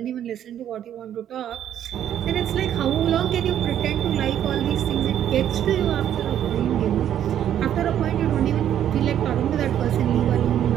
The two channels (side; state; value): left; quieter; 10.5 dB